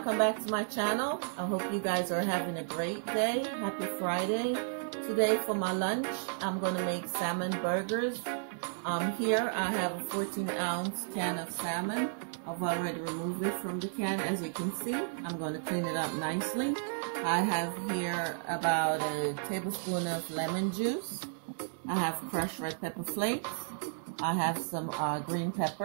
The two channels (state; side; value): silent; left; digital silence